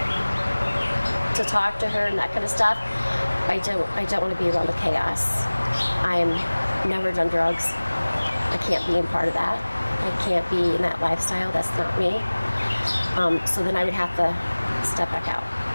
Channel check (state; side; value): inverted; both; correlation -1.00